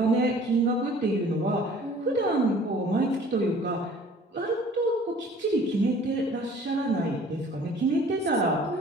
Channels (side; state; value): both; normal; correlation 0.51